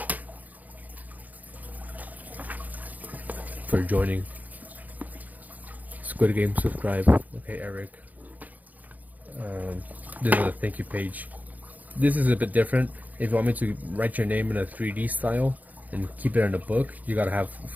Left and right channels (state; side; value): late; left; 0.079 ms